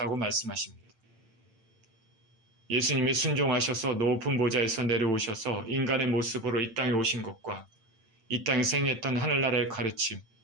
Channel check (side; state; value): left; late; 8.9 ms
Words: 말씀하십니다. 예수님이 순종하셔서 높은 보좌에서 내려오셔서 인간의 모습으로 이 땅에 오신 것과 이 땅에서 행했던 하늘나라의 가르침,